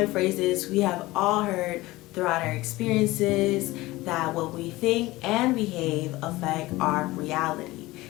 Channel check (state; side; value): quieter; right; 19.2 dB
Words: phrases we have all heard throughout our experiences that what we think and behave affect our reality.